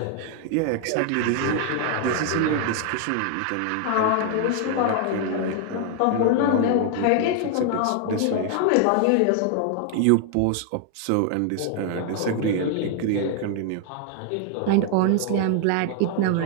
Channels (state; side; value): different; both; correlation 0.00